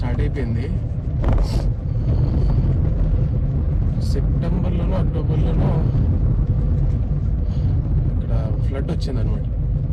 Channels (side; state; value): both; identical; correlation 1.00